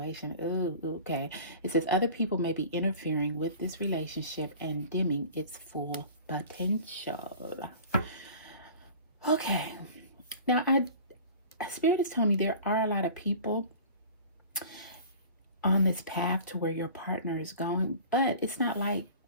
Ooh, okay. It says other people may be interfering with this relationship and dimming its full potential. Okay. Now, Spirit is telling me there are a lot of people on this path to where your partner is going, but it's not like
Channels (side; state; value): both; inverted; correlation -0.42